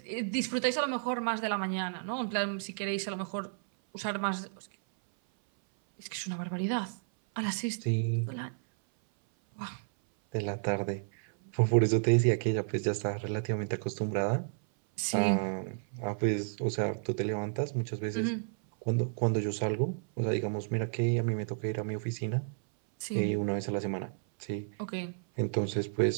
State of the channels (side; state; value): left; silent; 57 dB below the other